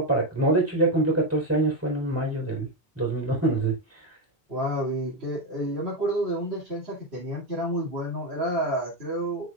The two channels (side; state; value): both; normal; correlation 0.08